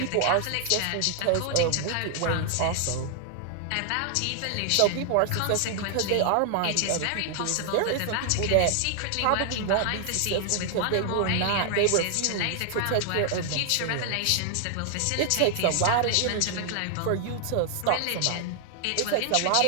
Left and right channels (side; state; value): both; different; correlation 0.00